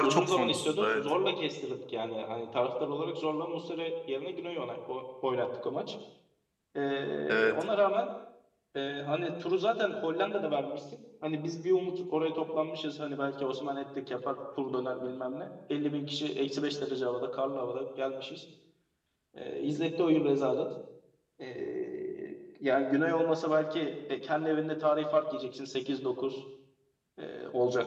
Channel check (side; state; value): both; identical; correlation 1.00